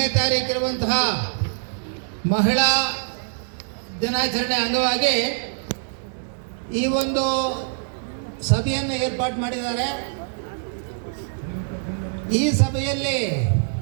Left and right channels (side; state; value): left; silent; digital silence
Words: ತಾರೀಕು ಇರುವಂತಹ ಮಹಿಳಾ ದಿನಾಚರಣೆ ಅಂಗವಾಗಿ ಈ ಒಂದು ಸಭೆಯನ್ನು ಏರ್ಪಾಡು ಮಾಡಿದ್ದಾರೆ. ಈ ಸಭೆಯಲ್ಲಿ